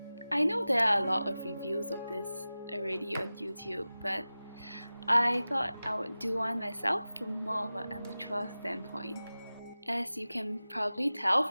know there are a lot of reviews of this already on YouTube, but I thought I would do one myself from more of an amateur standpoint. As you can probably tell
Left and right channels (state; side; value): inverted; both; correlation -0.96